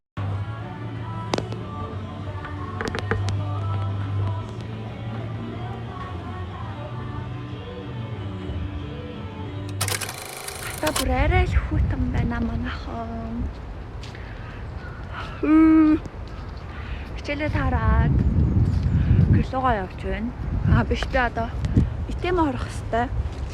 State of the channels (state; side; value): identical; both; correlation 1.00